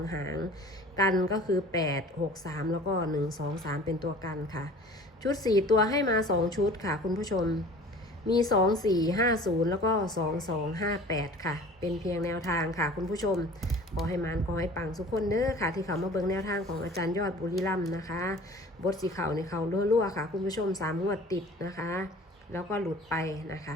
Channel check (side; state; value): both; normal; correlation 0.45